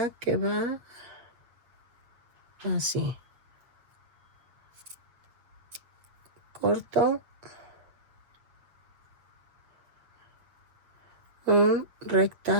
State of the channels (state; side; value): late; left; 7.7 ms